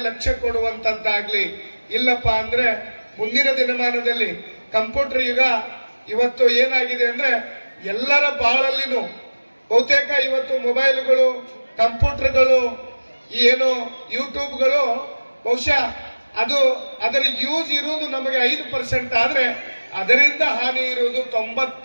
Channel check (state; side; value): inverted; both; correlation -1.00